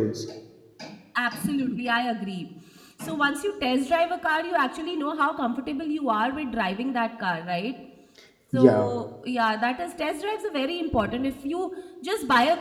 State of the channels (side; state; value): both; identical; correlation 1.00